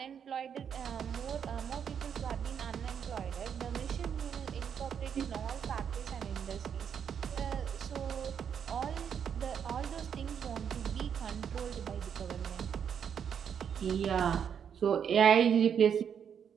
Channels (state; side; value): quieter; left; 7.9 dB